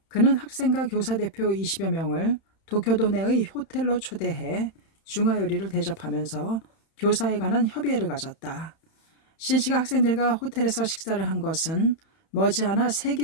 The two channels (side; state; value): right; late; 31 ms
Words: 그는 학생과 교사 대표 20여 명을 도쿄도 내의 호텔로 초대해 중화요리를 대접하면서 교사에 관한 협의회를 가졌다. 신씨가 학생들과 호텔에서 식사를 한 것은 머지않아